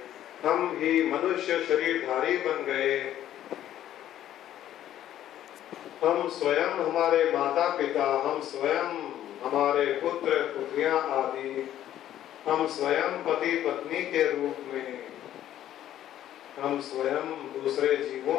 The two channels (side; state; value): right; quieter; 11.9 dB